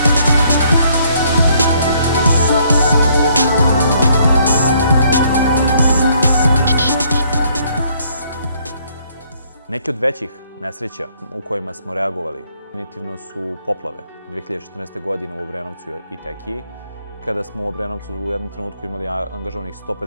Neki od većih nesreća u kojima smo reagovali definitivno su poplave 2014. godine u Obrenovcu i Tekiji, kada smo u Obrenovcu u jednom trenutku imali angažovanih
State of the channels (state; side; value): inverted; both; correlation -0.66